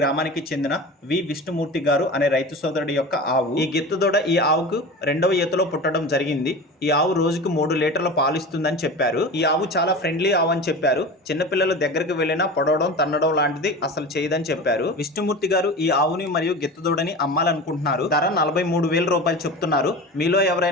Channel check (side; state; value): both; normal; correlation 0.32